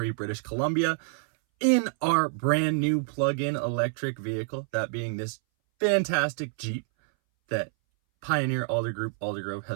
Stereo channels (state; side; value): silent; left; 60 dB below the other